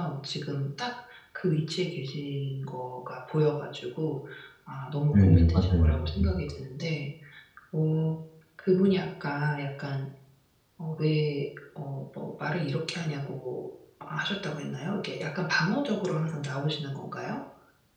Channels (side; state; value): both; identical; correlation 1.00